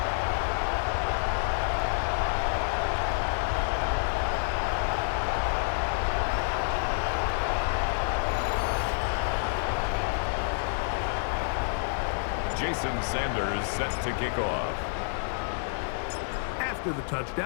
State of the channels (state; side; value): silent; right; digital silence